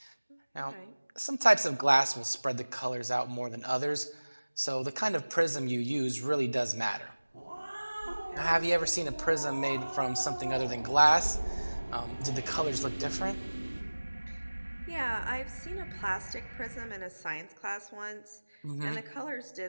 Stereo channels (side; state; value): both; inverted; correlation -1.00